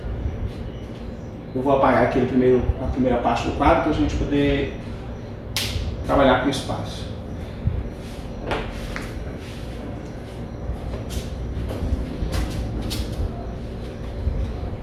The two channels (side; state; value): both; identical; correlation 1.00